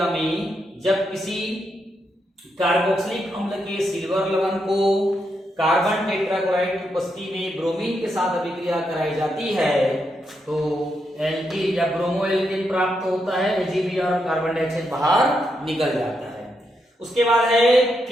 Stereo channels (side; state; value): both; normal; correlation 0.82